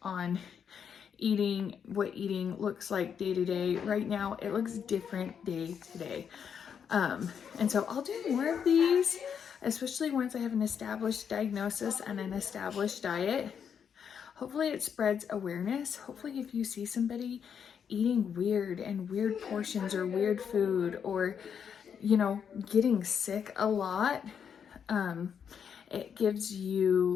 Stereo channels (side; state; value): right; quieter; 7.5 dB